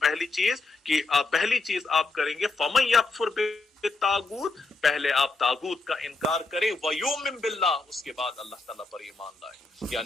پہلی چیز آپ کریں گے فَمَن يَكْفُرْ بِالطَّاغُوتِ، پہلے آپ طاغوت کا انکار کریں، وَيُؤْمِن بِاللَّهِ، اس کے بعد اللہ تعالیٰ پر ایمان لائے۔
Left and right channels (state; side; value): quieter; right; 3.6 dB